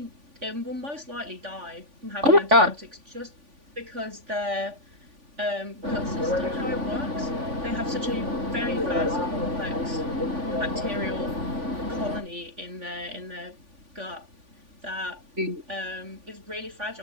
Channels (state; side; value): late; left; 3.5 ms